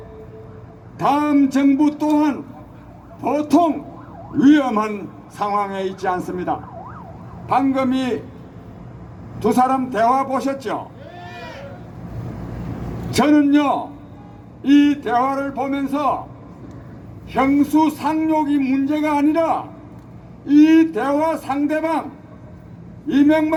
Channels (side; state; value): both; identical; correlation 1.00